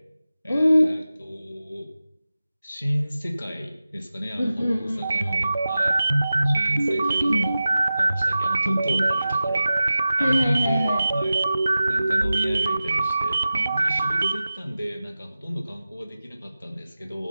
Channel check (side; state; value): both; inverted; correlation -0.95